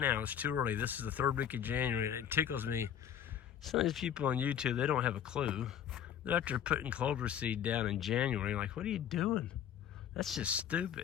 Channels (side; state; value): right; quieter; 9.3 dB